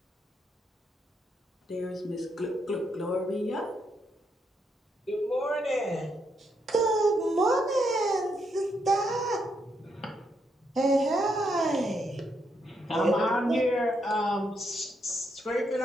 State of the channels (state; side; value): normal; both; correlation 0.78